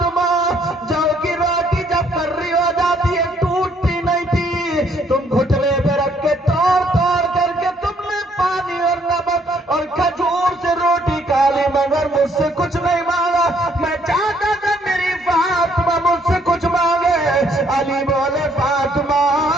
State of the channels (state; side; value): normal; both; correlation 0.67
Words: جو کی روٹی جب کرری ہو جاتی ہے ٹوٹتی نہیں تھی, تم گھٹنے پہ رکھ کے توڑ کر کے تم نے پانی اور نمک اور کھجور سے روٹی کھا لی مگر مجھ سے کچھ نہیں مانگا. میں چاہتا تھا میری فاطمہ مجھ سے کچھ مانگے. علی بولے فاطمہ